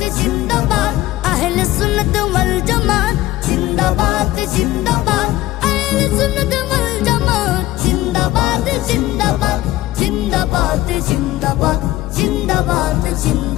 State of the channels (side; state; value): right; quieter; 16.4 dB